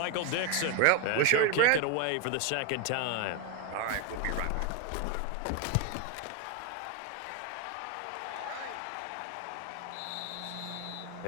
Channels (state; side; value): different; both; correlation 0.02